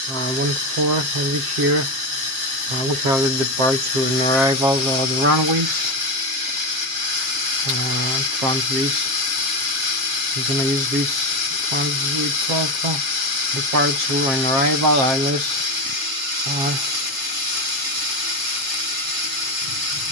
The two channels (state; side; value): late; left; 7.6 ms